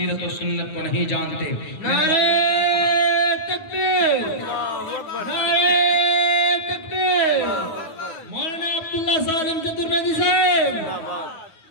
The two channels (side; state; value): right; late; 9.4 ms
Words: و سنت کو نہیں جانتے. نعرہ تکبیر، نعرہ تکبیر. مولانا عبداللہ سالم چترویدی صاحب،